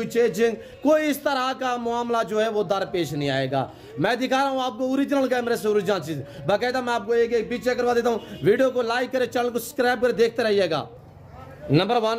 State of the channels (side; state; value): both; identical; correlation 1.00